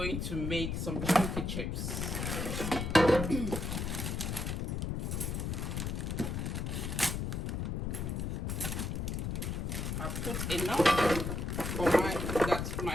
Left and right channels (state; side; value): noise; left; rumble, 2 dB below the sound